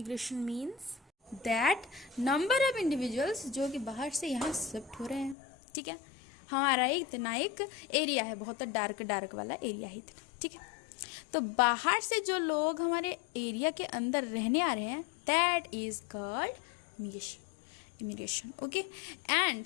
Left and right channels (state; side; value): drops out; right; at 5.4 s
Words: means that number of individuals जो कि बाहर से यहाँ शिफ्ट हो रहे हैं, ठीक है। हमारा इतना एक एरिया है, बहुत डार्क वाला एरिया है, ठीक है। तो बाहर से जो लोग हमारे एरिया के अंदर रहने आ रहे हैं, that is called immigration, okay.